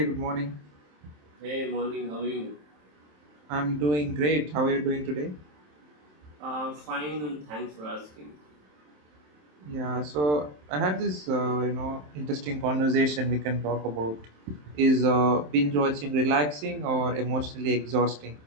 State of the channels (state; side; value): late; left; 27 ms